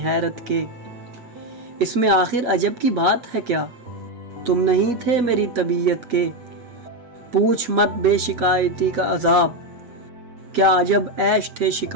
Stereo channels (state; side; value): late; left; 7.9 ms